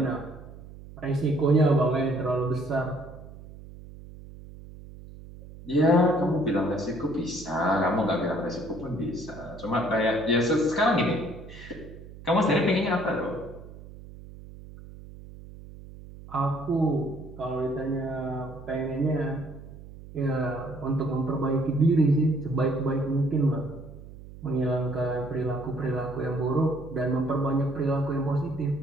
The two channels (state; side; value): noise; right; hum, 16 dB below the sound